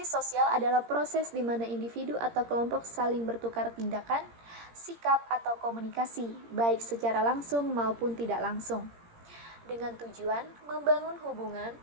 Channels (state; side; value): late; left; 17 ms